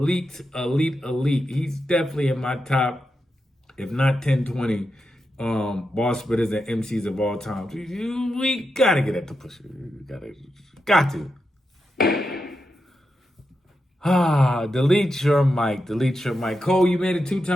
He's definitely in my top, if not 10, 20 bar spitters and MCs of all time. We gotta get at the Pusha. Got to. Delete your mic. Cole, you made a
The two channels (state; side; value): normal; both; correlation 0.87